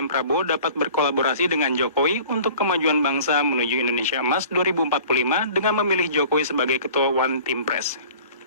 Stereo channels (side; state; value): both; inverted; correlation -0.46